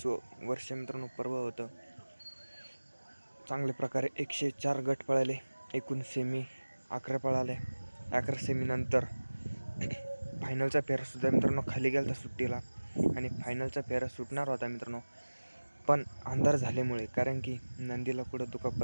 वर्ष मित्रांनो पर्व होतं. चांगल्या प्रकारे 104 गट पळाले, एकूण सेमी 11 पळाले. 11 सेमीनंतर फायनलचा फेरासुद्धा मित्रांनो खाली गेला होता सुट्टीला आणि फायनलचा फेरा सुटणार होता मित्रांनो, पण अंधार झाल्यामुळे कारण की नंदीला कुठं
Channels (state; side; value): inverted; both; correlation -1.00